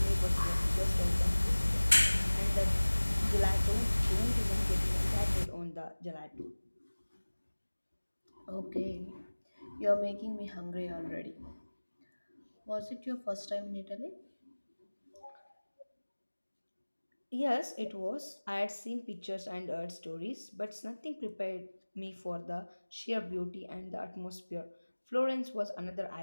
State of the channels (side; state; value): both; inverted; correlation -1.00